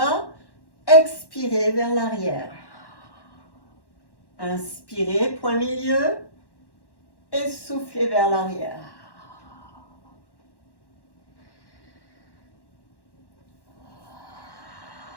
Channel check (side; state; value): right; late; 1.1 ms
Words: Expirez vers l'arrière. Inspirez, point milieu, et soufflez vers l'arrière.